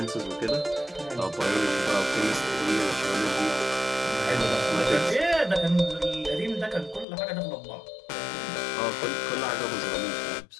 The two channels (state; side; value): drops out; right; at 7.1 s